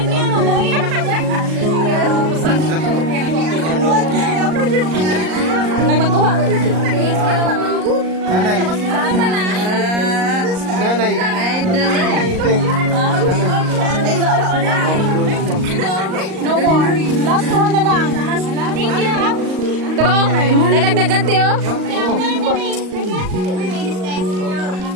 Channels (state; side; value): late; left; 38 ms